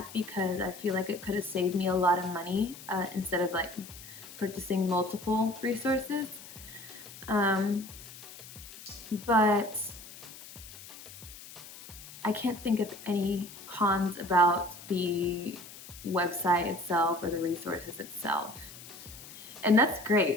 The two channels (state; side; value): noise; left; hiss, 16 dB below the sound